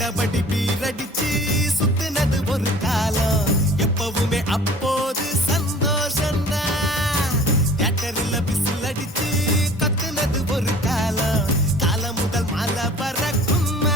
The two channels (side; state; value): both; normal; correlation 0.47